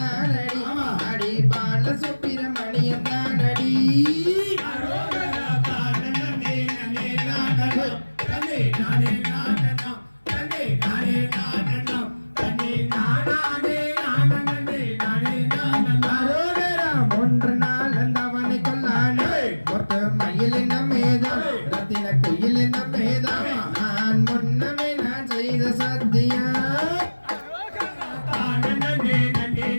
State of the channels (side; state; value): both; inverted; correlation -1.00